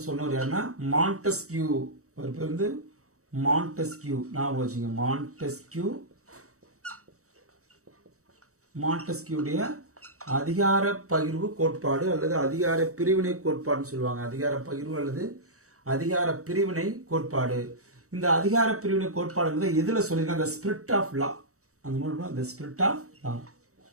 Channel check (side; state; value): left; late; 0.65 ms